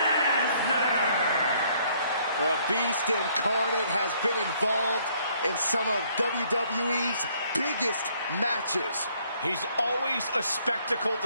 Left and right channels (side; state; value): both; inverted; correlation -0.65